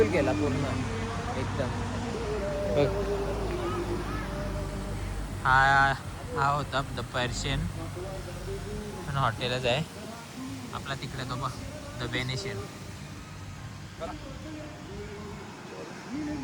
केला पूर्ण एकदम. हा होता द पर्शियन, पण हॉटेलच आहे आपला तिकडे, तो बघ द वेनेशियन.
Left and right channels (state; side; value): identical; both; correlation 1.00